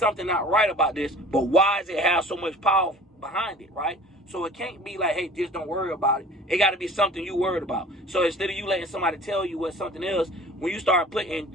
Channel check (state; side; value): normal; both; correlation 0.45